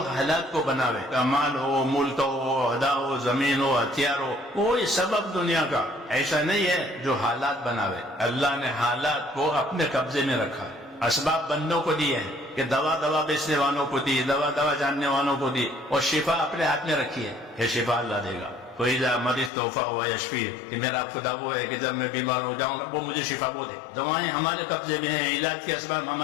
حالات کو بناوے، مال ہو، ملک ہو، عہدہ ہو، زمین ہو، ہتھیار ہو، کوئی سبب دنیا کا ایسا نہیں ہے جو حالات بناوے۔ اللہ نے حالات کو اپنے قبضے میں رکھا، اسباب بندوں کو دیے ہیں کہ دوا بیچنے والوں کو دی، دوا جاننے والوں کو دی، اور شفا اپنے ہاتھ میں رکھی ہے، یہ شفا اللہ دے گا۔ کوئی مریض توحفہ ہوا یشفی، کہ میرا خدا وہ ہے کہ جب میں بیمار ہو جاؤں وہ مجھے شفا وہ دے۔ دوائیں ہمارے قبضے میں ہیں، علاج کے اسباب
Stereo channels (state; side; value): drops out; right; at 19.5 s